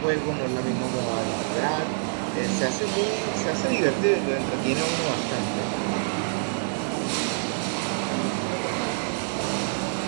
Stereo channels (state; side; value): silent; left; digital silence